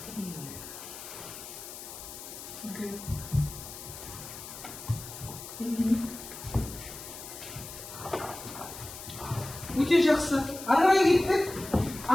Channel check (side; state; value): left; noise; hiss, 12 dB below the sound